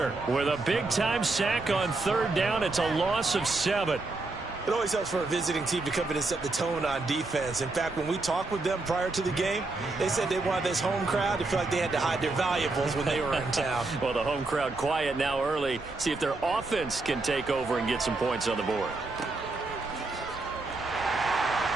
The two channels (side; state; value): left; quieter; 3.3 dB